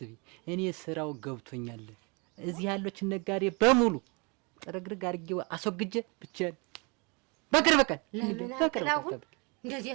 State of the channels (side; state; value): left; quieter; 30.7 dB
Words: እኔ ስራው ገብቶኛል። እዚህ ያሉትን ነጋዴ በሙሉ ጥርግርግ አድርጌው አስወግጄ ብቻዬን በቅርብ ቀን እንደዚህ